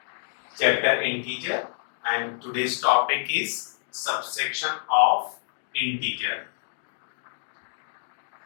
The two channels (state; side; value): silent; right; digital silence